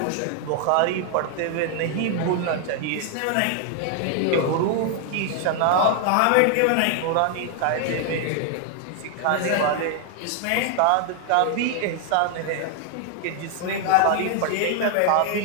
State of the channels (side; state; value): both; different; correlation 0.00